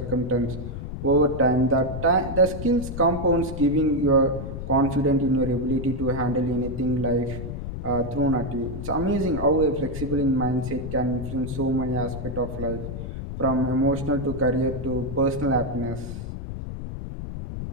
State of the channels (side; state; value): left; noise; rumble, 7 dB below the sound